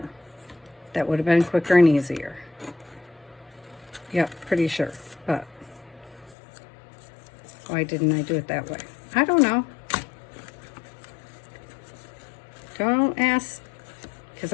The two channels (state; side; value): drops out; right; at 6.4 s